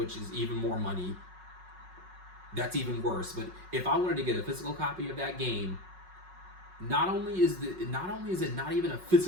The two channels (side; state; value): left; late; 5.4 ms